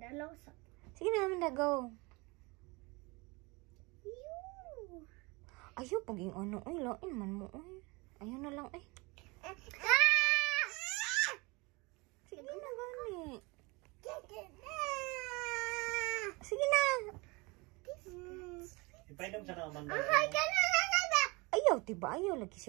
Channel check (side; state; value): left; quieter; 26.1 dB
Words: sa. Sige na, Amanda, go. Yoo. Ayaw, paging ano. Ay, lain man mo. Ay. Ayaw na lang, ay. Sige na, gani. Sige na. Ipainom siya ng Amanda. Hi, kanana. Ayaw, diba? Ayaw, lagi